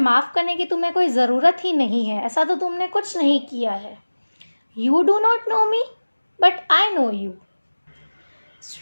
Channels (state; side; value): inverted; both; correlation -1.00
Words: करने की तुम्हें कोई ज़रूरत ही नहीं है, ऐसा तो तुमने कुछ नहीं किया है। You do not know me, but I know you.